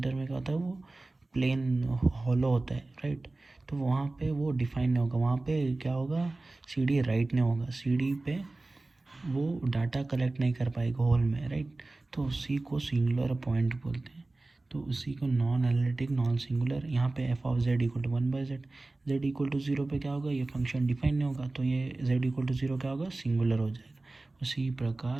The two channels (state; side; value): quieter; left; 3.0 dB